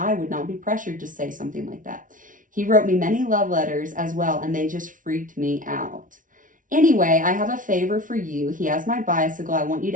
would not be pressured to say something like that. He wrote me many love letters as well, and they just freaked me out. Anyway, I have a favor for you. He has my bicycle. I want you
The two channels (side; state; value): left; late; 0.38 ms